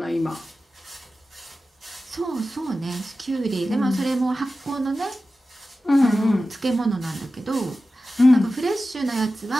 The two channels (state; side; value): normal; both; correlation 0.94